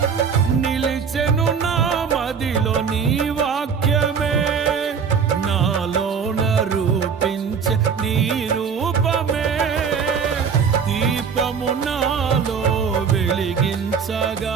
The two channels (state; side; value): quieter; left; 6.4 dB